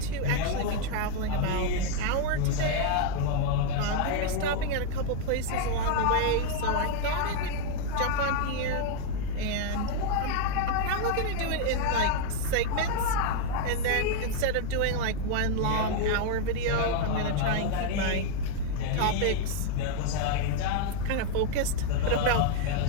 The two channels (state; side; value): different; both; correlation 0.00